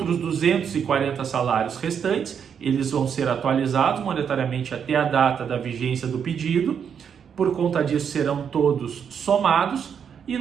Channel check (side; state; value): left; quieter; 7.5 dB